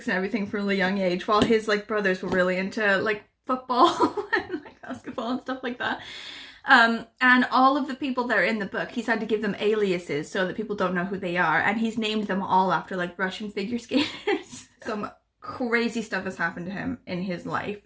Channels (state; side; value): identical; both; correlation 1.00